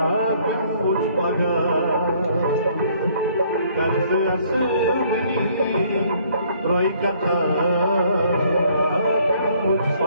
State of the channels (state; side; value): inverted; both; correlation -0.62